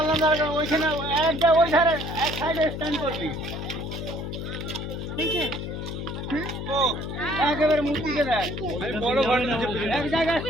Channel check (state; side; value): noise; left; hum, 6 dB below the sound